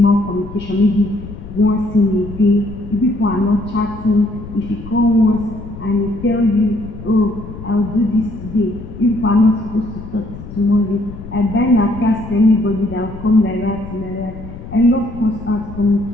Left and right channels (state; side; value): noise; left; rumble, 13 dB below the sound